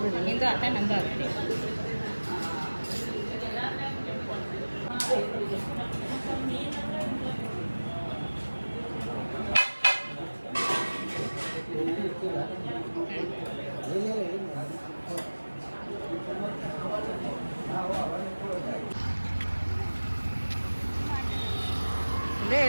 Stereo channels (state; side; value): inverted; both; correlation -1.00